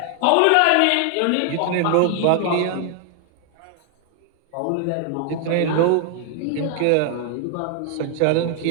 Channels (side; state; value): both; different; correlation 0.00